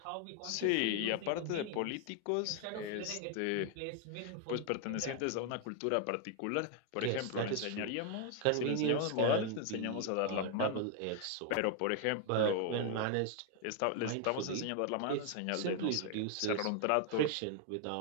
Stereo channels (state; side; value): different; both; correlation 0.00